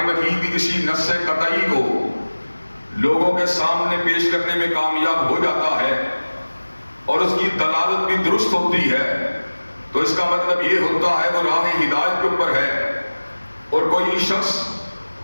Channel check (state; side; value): inverted; both; correlation -1.00